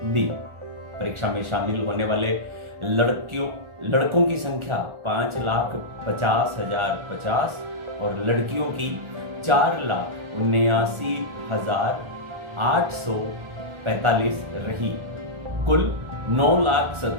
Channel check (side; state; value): left; late; 1.4 ms